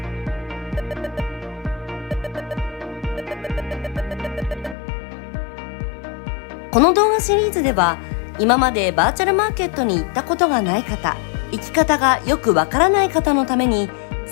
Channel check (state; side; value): drops out; right; at 4.8 s